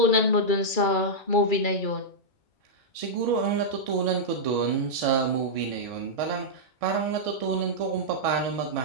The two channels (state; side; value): late; right; 2.3 ms